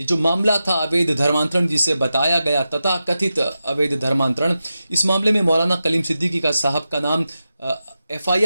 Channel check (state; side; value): inverted; both; correlation -0.91